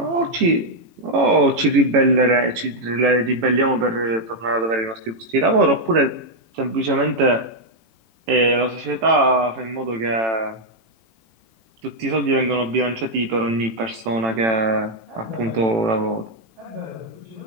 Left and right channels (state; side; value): late; left; 18 ms